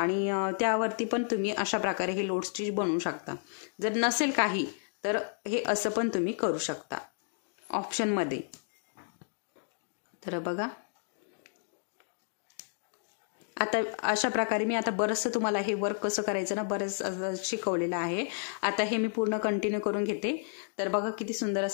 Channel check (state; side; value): silent; right; digital silence